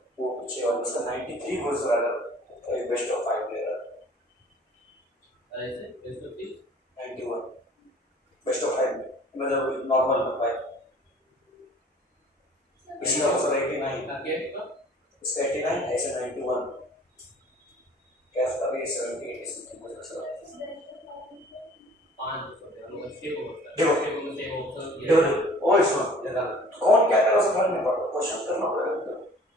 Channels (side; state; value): both; normal; correlation 0.51